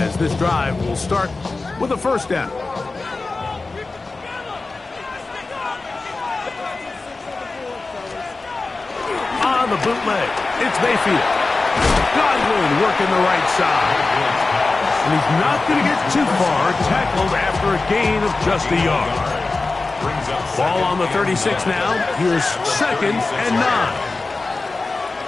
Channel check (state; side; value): quieter; right; 3.6 dB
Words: this drive will start with a 1st down. On the bootleg, it's Mayfield. Godwin working the right side. And he's not going to get too far, tackled after a gain of just a yard. Ball on the 36 now. Here's 2nd and 9.